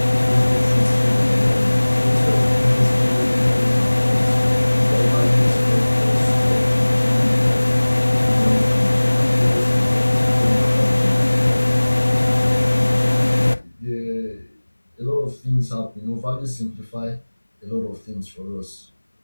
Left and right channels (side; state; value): both; inverted; correlation -1.00